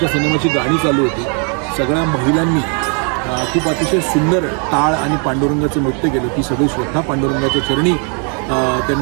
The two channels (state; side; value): quieter; left; 39.0 dB